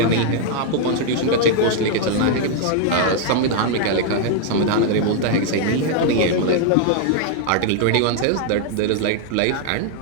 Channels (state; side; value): different; both; correlation 0.00